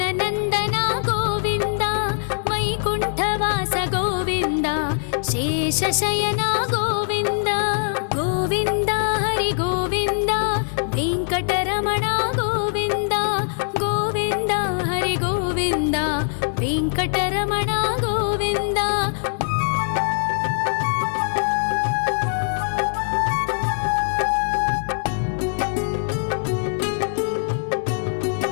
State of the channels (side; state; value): right; silent; digital silence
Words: गोविन्द वैकुण्ठवास गोविन्द शेषशयन गोविन्द गोविन्द हरि गोविन्द वेङ्कटरमण गोविन्द गोविन्द हरि गोविन्द वेङ्कटरमण गोविन्द